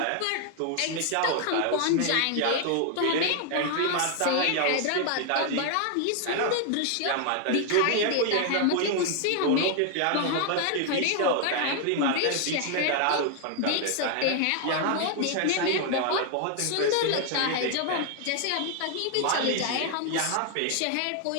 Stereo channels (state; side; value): different; both; correlation 0.00